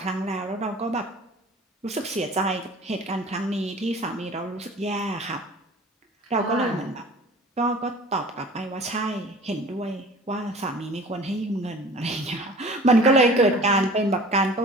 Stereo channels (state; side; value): normal; both; correlation 0.44